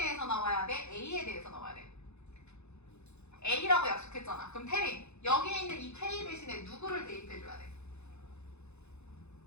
나와야 돼? A에 대해서 나와야 돼? A라고 약속했잖아. 그럼 태린, 여기에 있는 이 K 대신에 누구를 대입해줘야 돼?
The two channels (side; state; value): right; late; 0.81 ms